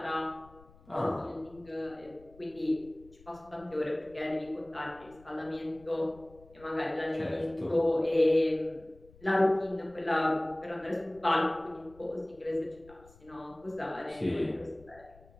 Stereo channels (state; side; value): noise; left; rumble, 25 dB below the sound